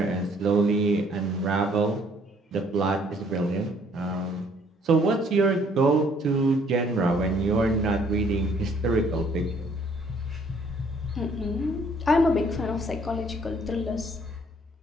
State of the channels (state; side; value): normal; both; correlation 0.62